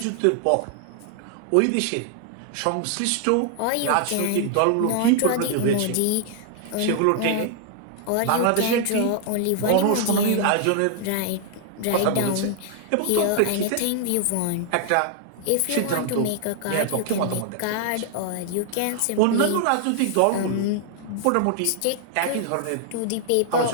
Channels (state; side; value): different; both; correlation 0.00